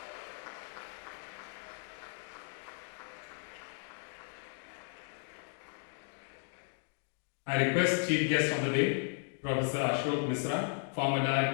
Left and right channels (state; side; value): silent; right; 54 dB below the other